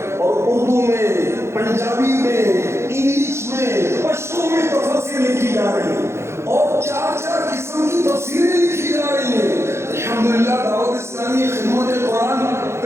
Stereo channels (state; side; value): late; left; 0.13 ms